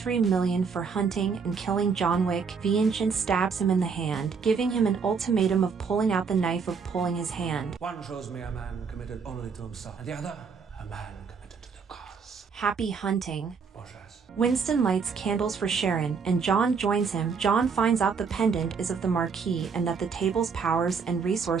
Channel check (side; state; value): left; quieter; 5.6 dB